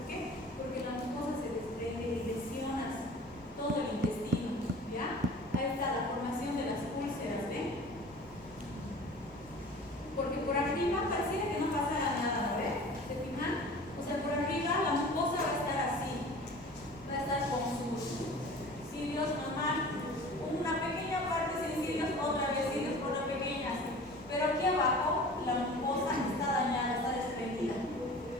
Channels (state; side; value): normal; both; correlation 0.42